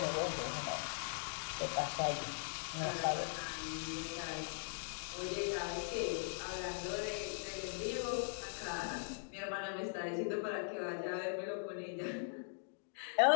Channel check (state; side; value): silent; right; digital silence